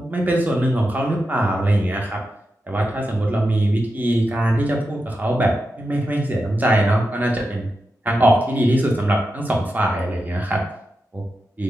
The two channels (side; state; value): both; normal; correlation 0.89